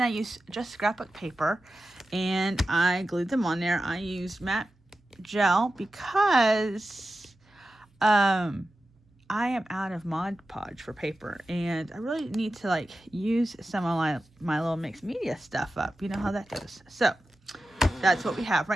I used just scrapbook paper, and I glued them on there. I used matte gel because I am out of Mod Podge for paper, and I really need to use some of my little mixed media stuff up. You know how that goes. So that's what we have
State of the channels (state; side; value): normal; both; correlation 0.93